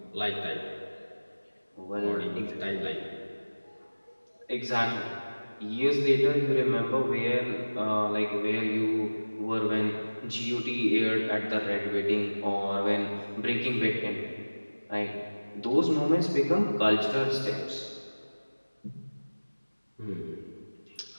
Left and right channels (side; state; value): both; inverted; correlation -1.00